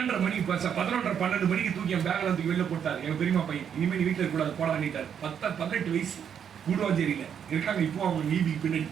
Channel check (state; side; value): quieter; left; 8.2 dB